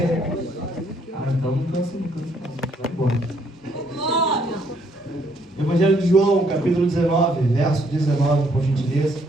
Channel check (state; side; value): normal; both; correlation 0.68